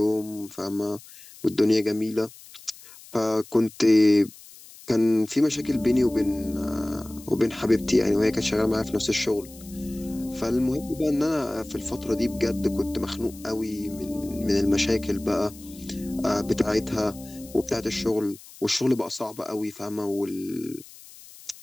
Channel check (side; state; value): left; noise; hiss, 20 dB below the sound